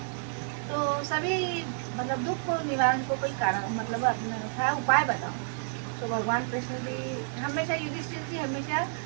तो सभी मतलब दुख को निवारण को कोई कारण मतलब अपना उपाय बताओ। तो भगवान कृष्ण जी हमेशा युधिष्ठिर जी हमेशा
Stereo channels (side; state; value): left; silent; digital silence